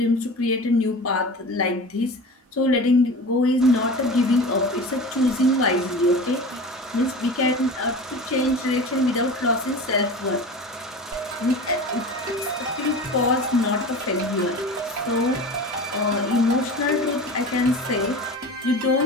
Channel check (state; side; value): normal; both; correlation 0.34